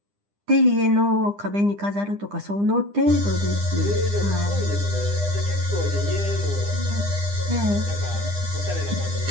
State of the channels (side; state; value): left; late; 9.9 ms